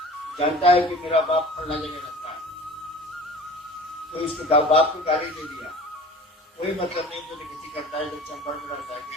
जानता है कि मेरा बाप फलना जगह रहता है, तो इसको बाप को गाली दे दिया, कोई मतलब नहीं। तो किसी करता है, जब चंबल में रहता है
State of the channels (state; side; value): normal; both; correlation 0.41